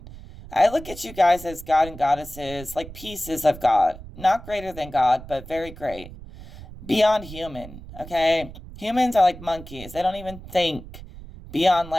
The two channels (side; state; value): right; noise; rumble, 15 dB below the sound